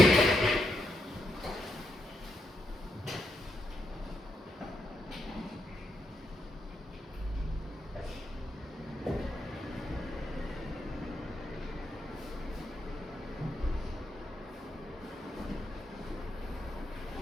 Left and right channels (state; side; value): normal; both; correlation 0.81